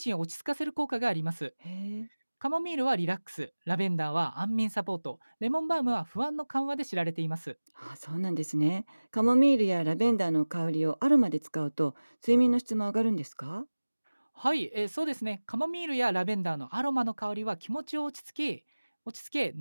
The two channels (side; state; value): both; inverted; correlation -1.00